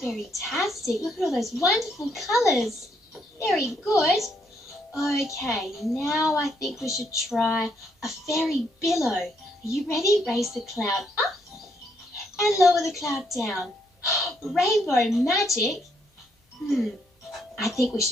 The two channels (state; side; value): normal; both; correlation 0.73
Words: very-tastic. Look at all those wonderful colours. Very good. Okay, now I think we should try a fairy billow. Are you ready? Raise the cloud up and lower the cloud down. Rainbow magic. I think we